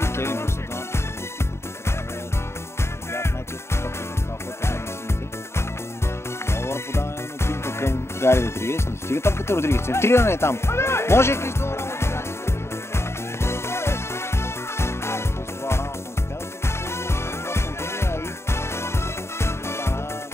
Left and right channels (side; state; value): right; late; 0.13 ms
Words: Кевин Брус. Много добро подаване на Пинто към Гари Родригес. Не стига топката Родригес. Центриране е там. Може Кристоф.